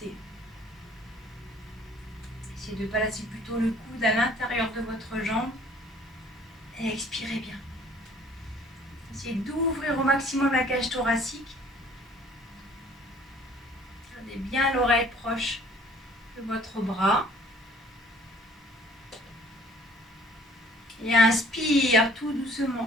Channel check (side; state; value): both; normal; correlation 0.56